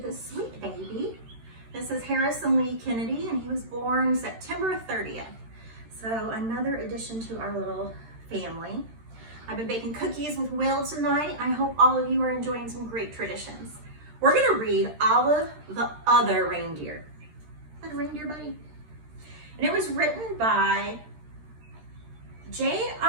sweet baby. This is Harrison Lee Kennedy, and he was born September 30th. So another addition to our little family. I've been baking cookies with Will tonight. I hope all of you are enjoying some great traditions. We're gonna read Olive the Other Reindeer. Is that a reindeer, buddy? And it was written by J.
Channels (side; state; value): left; late; 13 ms